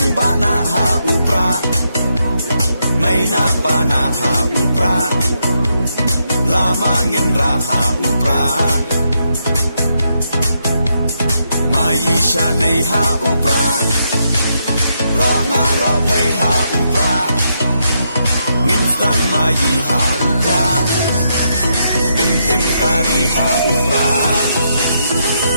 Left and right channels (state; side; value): inverted; both; correlation -0.80